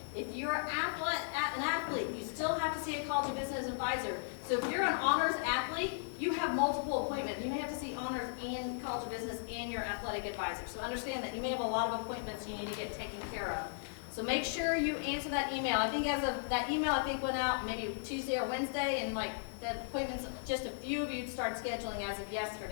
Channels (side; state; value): right; silent; digital silence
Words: If you're an athlete, you still have to see a College of Business advisor. So if you're an honors athlete, you have multiple appointments. You may have to see honors and College of Business and your athletic advisor. So understand that you may have a lot of appointments you need to get taken care of. So make sure you answer that email. I think as of that email, I think went out maybe Tuesday or Wednesday, and like the appointments, just a few of you start scheduling as of